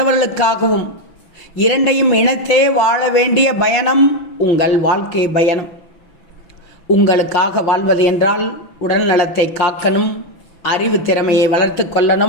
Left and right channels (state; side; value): late; right; 6.0 ms